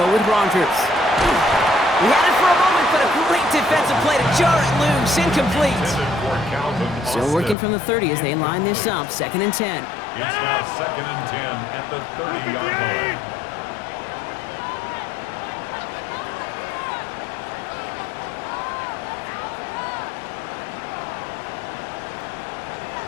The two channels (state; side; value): drops out; right; at 7.6 s